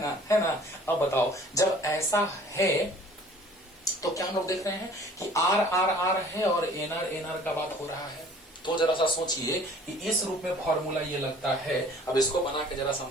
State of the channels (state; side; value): normal; both; correlation 0.51